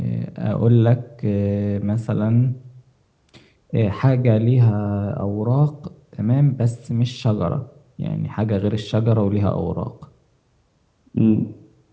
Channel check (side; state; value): both; identical; correlation 1.00